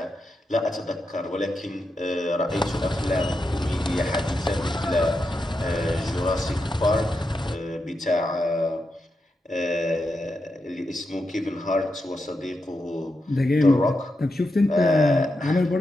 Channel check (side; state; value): both; normal; correlation 0.87